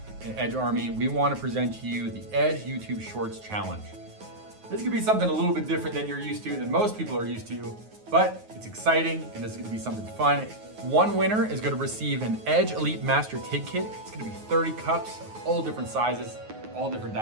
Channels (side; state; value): left; late; 9.4 ms